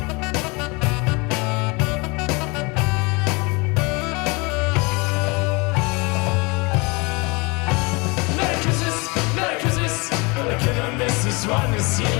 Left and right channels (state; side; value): quieter; right; 27.8 dB